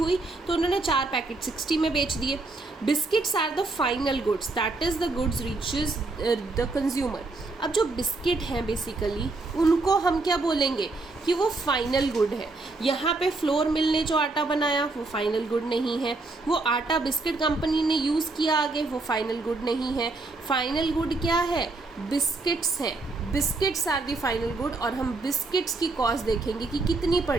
तो उन्होंने 4 पैकेट 60 में बेच दिए। Biscuits are the final goods, that is the goods reaches the consumer. अब जो बिस्किट हैं बेसिकली उनको हम क्या बोलेंगे कि वो फाइनल गुड है। यहाँ पे फ्लोर मिल ने जो आटा बनाया वो फाइनल गुड नहीं है, वो आटा बिस्किट कंपनी ने यूज़ किया आगे वो फाइनल गुड नहीं है। फाइनल गुड क्या है? बिस्किट्स हैं। Biscuits are the final good, और हम बिस्किट्स की कॉस्ट देखेंगे कि कितनी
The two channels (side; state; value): left; quieter; 3.4 dB